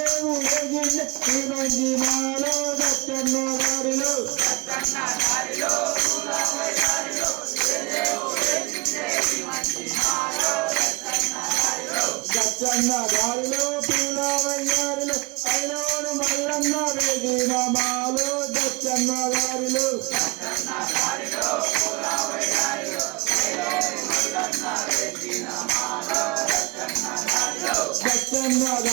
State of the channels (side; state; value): left; quieter; 25.6 dB